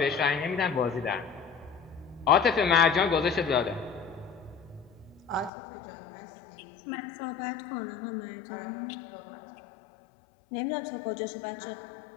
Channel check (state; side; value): drops out; right; at 5.5 s